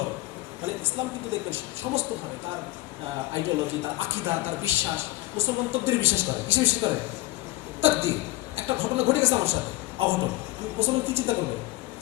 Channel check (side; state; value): right; quieter; 19.0 dB